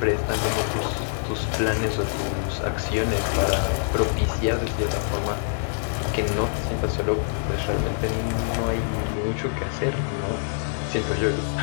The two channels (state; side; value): silent; right; digital silence